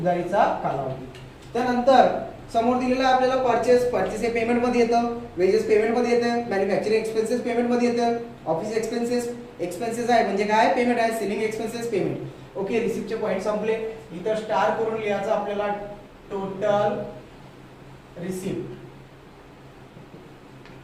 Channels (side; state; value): both; identical; correlation 1.00